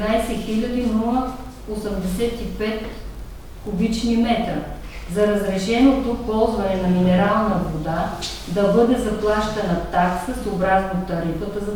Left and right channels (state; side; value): identical; both; correlation 1.00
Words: 085 кубични метра. за разрешеното ползване на минерална вода да бъде заплащана такса съобразно тарифата за